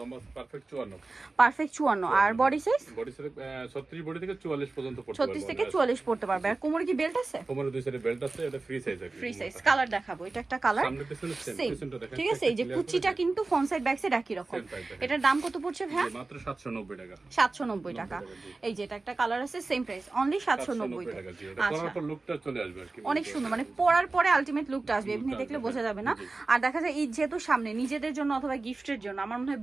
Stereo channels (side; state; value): left; quieter; 3.5 dB